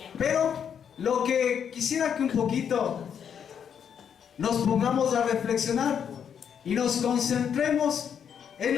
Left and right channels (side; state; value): right; quieter; 7.9 dB